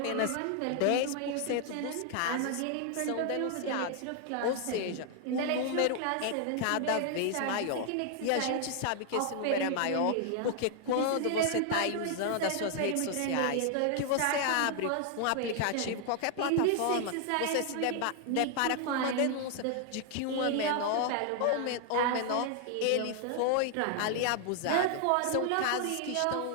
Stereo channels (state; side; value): different; both; correlation 0.00